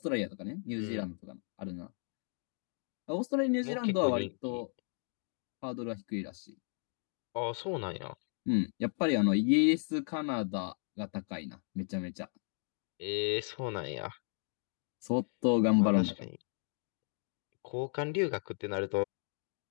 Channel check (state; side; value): silent; right; 54 dB below the other